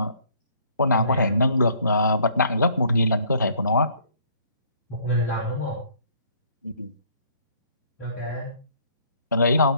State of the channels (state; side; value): inverted; both; correlation -0.61